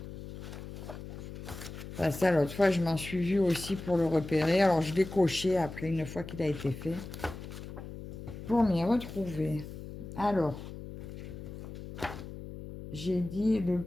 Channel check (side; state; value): left; noise; hum, 11 dB below the sound